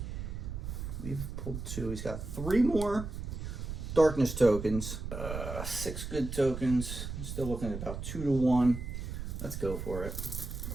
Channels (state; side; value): noise; right; rumble, 6 dB below the sound